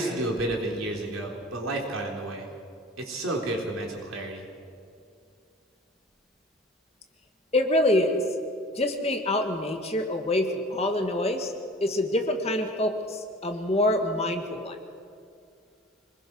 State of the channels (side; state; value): both; normal; correlation 0.42